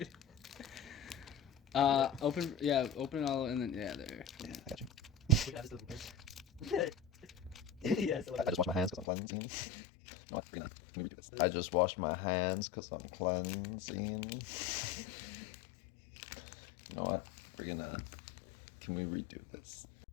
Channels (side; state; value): right; drops out; at 9.1 s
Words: Open it all and then, yeah, there. Yeah, I got you. Yes, I just washed my hands because I'm cleansing. No, what? Let me redo this. I just washed my hands because I'm cleansing. You know what? Can we redo this?